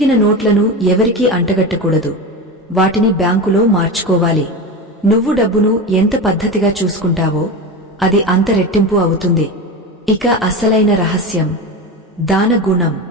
నోట్లను ఎవరికీ అంటగట్టకూడదు. వాటిని బ్యాంకులో మార్చుకోవాలి. నువ్వు డబ్బును ఎంత పద్ధతిగా చూసుకుంటావో అది అంత రెట్టింపు అవుతుంది. ఇక అసలైన రహస్యం దాన గుణం.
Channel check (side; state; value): both; normal; correlation 0.23